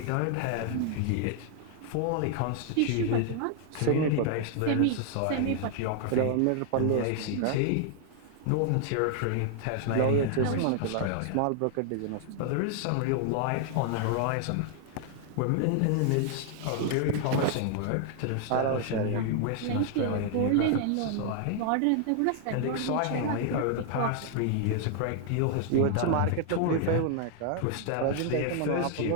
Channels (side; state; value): both; different; correlation 0.00